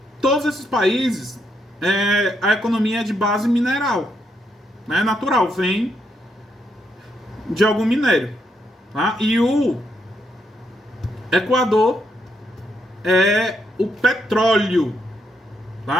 todos esses países, a economia é de base mineral, né? Natural, vem de algum minério, tá? E o Equador é o petróleo,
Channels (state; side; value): normal; both; correlation 0.78